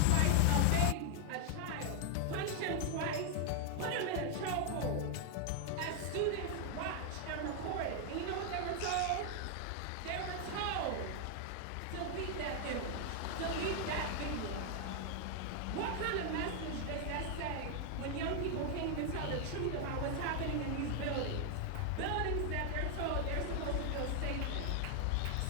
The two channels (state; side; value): different; both; correlation 0.00